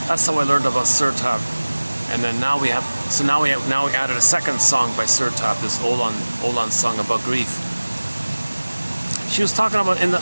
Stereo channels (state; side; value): inverted; both; correlation -1.00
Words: That's how I learned about Sir Tab. And then now we added a second song by Sir Tab, this Olan song about grief. She was talking about